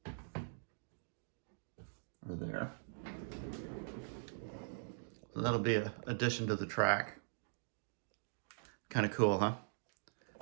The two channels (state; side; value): silent; left; digital silence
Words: or there. So that'll be an addition to the track. Kind of cool, huh?